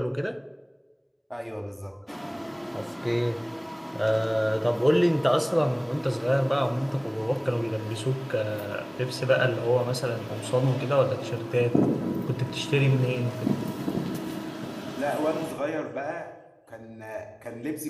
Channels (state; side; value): identical; both; correlation 1.00